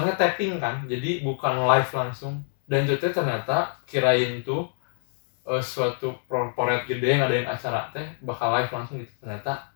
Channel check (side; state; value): right; silent; digital silence